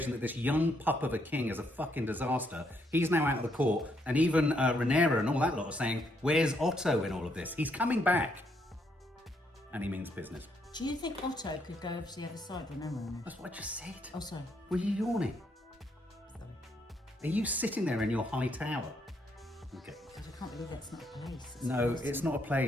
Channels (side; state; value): both; normal; correlation 0.74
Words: that this young pup of a king is a fucking disaster, he's now out of the court. And even Rhaenyra and all that lot are saying, where's Otto in all of this? He's coming back. And he means business. Do you think Otto could go over to the other side? Remember? That's what I just said. Oh, sorry. Were you yawning? Are you sitting there in your high tower? Okay. I can't believe that's not a place. No, it's not a